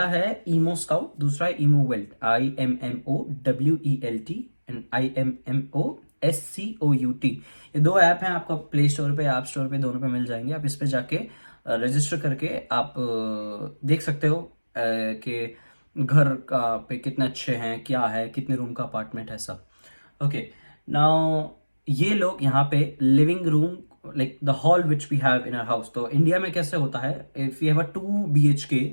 है ईमो स्काउट, दूसरा है ईमो वेल्ट, IMMOWELT एंड IMMOSCOUT। ये दो ऐप हैं, आपको प्ले स्टोर पे, ऐप स्टोर पे, दोनों पे मिल जाएंगे। आप इस पे जाके रजिस्टर करके आप देख सकते हो कि घर का पे कितने अच्छे हैं, क्या है, कितने रूम का अपार्टमेंट है, सब। ओके, नाउ ये लोग यहाँ पे living room, like the hall which we have in our house, तो इंडिया में कैसे होता है, if you have a 2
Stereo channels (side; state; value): both; inverted; correlation -1.00